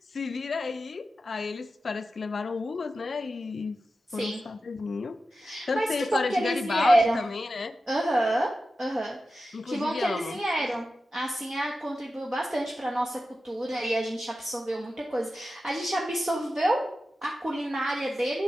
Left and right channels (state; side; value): normal; both; correlation 0.92